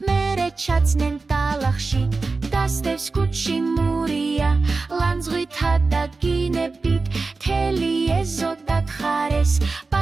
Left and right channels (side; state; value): left; quieter; 3.9 dB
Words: მერე ჩაცნენ ტალახში. დასდევს კუჩი მურია, ლანძღვითა და გინებით, თელი ეზო დათხარეს,